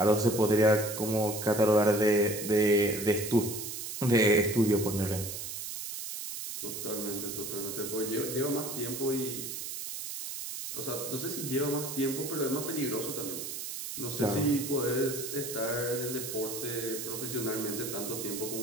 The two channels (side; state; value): right; noise; hiss, 7 dB below the sound